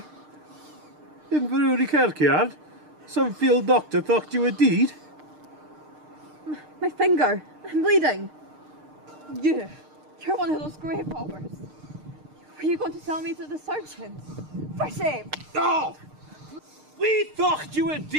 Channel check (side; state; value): left; late; 6.6 ms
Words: In Inverurie kirkyard. Some field doctor thought you were deed. My finger. I'm bleeding. You're one of those grave robbers. Were you going to tell me to the surgeons? For shame. Oh! We thought you were